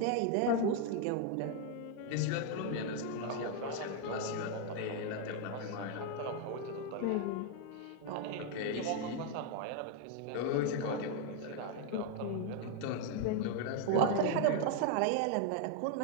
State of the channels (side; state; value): both; different; correlation 0.01